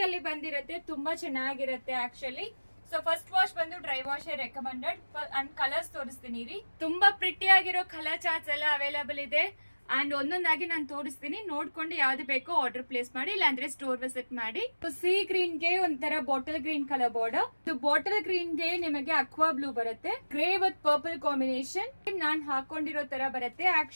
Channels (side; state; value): both; inverted; correlation -1.00